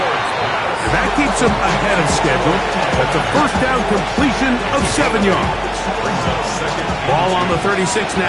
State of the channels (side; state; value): both; identical; correlation 1.00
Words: That keeps him ahead of schedule. That's a first down completion of 7 yards. Ball on the 36